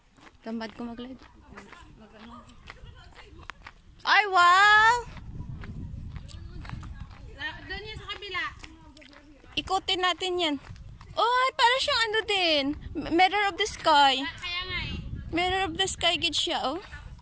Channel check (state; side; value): identical; both; correlation 1.00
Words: Tamad ko mag-live. Ay, wow! Doon yan sa kabila. Ikutin natin yan. Ay, para siyang ano din. Mirror of the sky. Kaya nga eh. Mirror of the sky gid siya, oh.